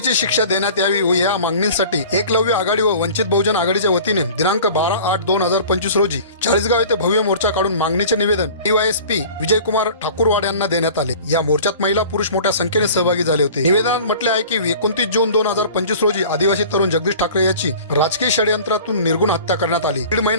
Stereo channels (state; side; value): inverted; both; correlation -0.43